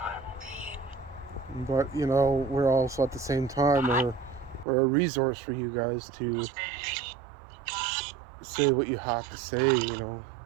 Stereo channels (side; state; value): left; drops out; at 4.7 s